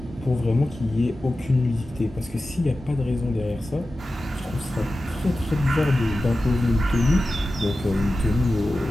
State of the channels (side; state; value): both; normal; correlation 0.94